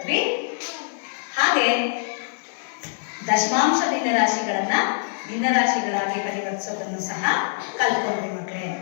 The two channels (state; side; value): silent; right; 58 dB below the other